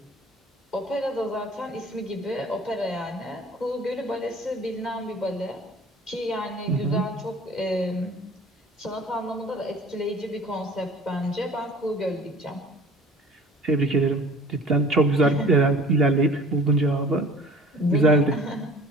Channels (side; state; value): both; normal; correlation 0.46